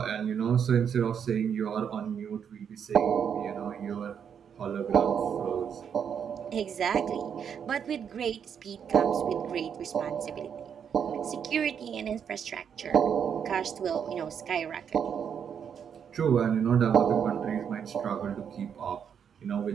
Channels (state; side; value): quieter; left; 7.7 dB